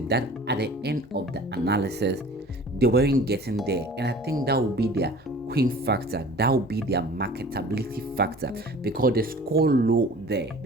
that at the end of the analysis, they weren't getting there. And I think that would be their queen factor. That would be their marketability factor, because they score low there.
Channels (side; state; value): both; normal; correlation 0.45